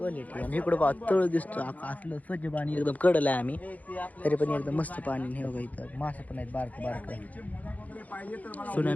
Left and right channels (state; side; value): late; right; 0.076 ms